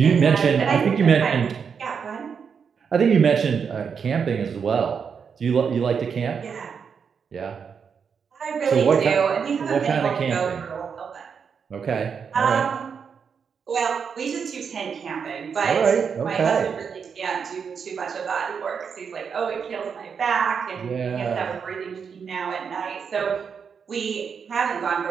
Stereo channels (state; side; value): quieter; left; 6.5 dB